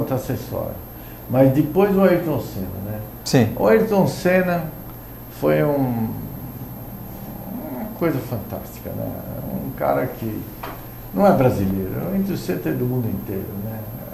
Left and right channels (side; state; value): both; identical; correlation 1.00